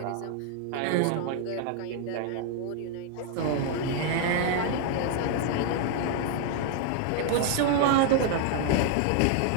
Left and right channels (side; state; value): both; different; correlation 0.00